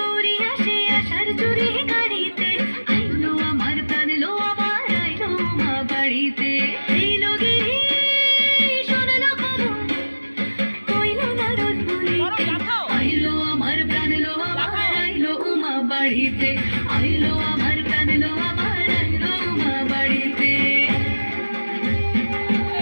আসে আশার জুড়ে গাড়িতে, আইলো আমার প্রাণ লো আমার আইলো মা বাড়িতে। এইলো গিরি শোনালো খবর, কইলো নারদ মুনিতে, আইলো আমার প্রাণ লো আমার আইলো মা বাড়িতে, আইলো আমার প্রাণ লো আমার আইলো মা বাড়িতে।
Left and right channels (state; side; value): inverted; both; correlation -1.00